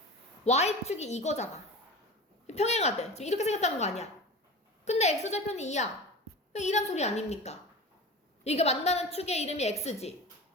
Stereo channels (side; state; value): both; normal; correlation 0.33